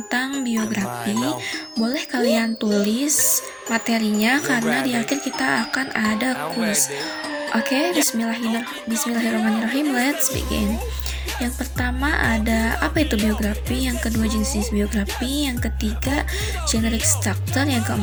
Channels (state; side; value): identical; both; correlation 1.00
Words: biografi. Boleh kalian tulis materinya karena di akhir kita akan ada kuis. Oke, bismillahirrahmanirrahim. Let's begin. Yang pertama ada apa itu biografi, yang kedua jenis biografi, yang ketiga generic structure, yang